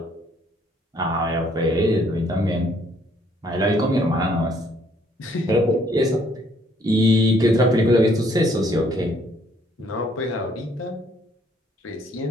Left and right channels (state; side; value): normal; both; correlation 0.65